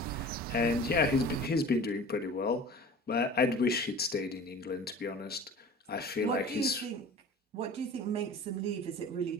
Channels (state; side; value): normal; both; correlation 0.40